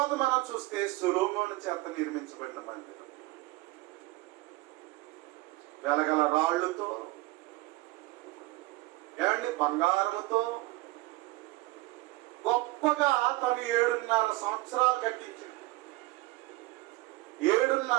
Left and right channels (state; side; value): quieter; left; 20.8 dB